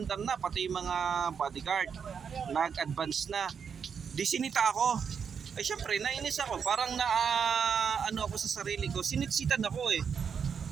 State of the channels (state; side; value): quieter; left; 6.8 dB